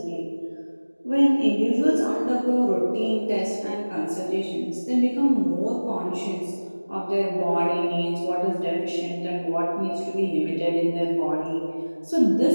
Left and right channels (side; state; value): both; inverted; correlation -1.00